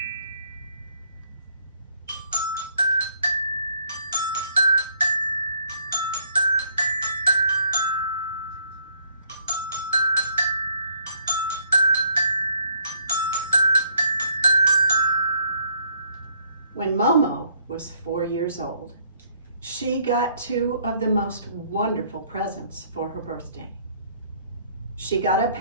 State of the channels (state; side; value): inverted; both; correlation -0.65